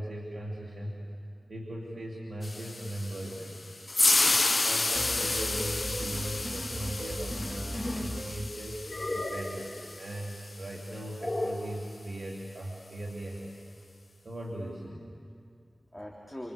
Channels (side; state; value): both; normal; correlation 0.96